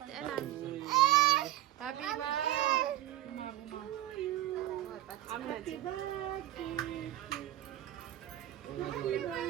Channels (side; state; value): left; quieter; 14.4 dB